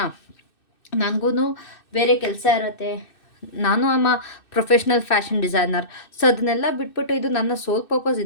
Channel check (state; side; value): late; right; 2.6 ms